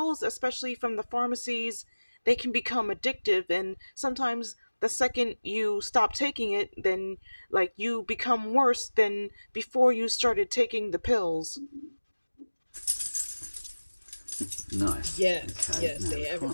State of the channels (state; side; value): inverted; both; correlation -1.00